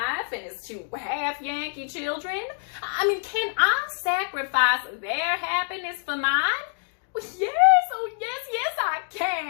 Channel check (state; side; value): silent; right; digital silence